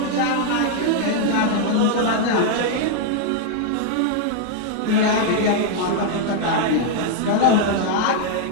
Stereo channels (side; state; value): both; different; correlation 0.00